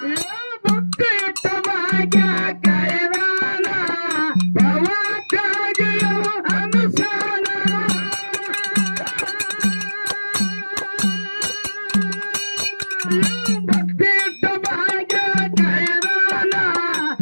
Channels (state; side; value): inverted; both; correlation -1.00